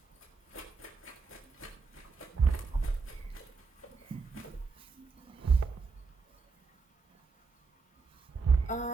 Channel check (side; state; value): left; quieter; 4.6 dB